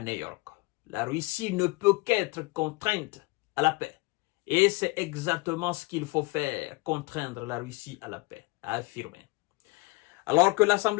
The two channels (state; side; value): quieter; right; 24.1 dB